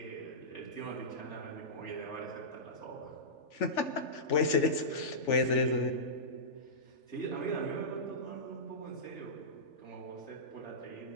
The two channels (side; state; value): right; late; 3.4 ms